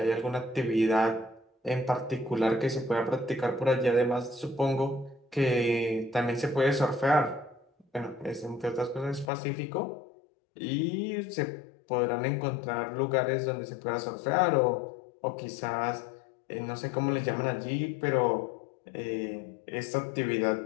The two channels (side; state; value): right; drops out; at 9.3 s